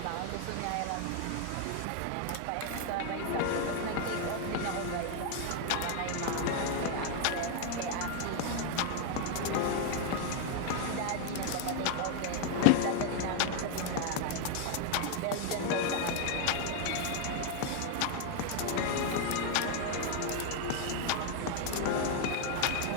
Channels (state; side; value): different; both; correlation 0.00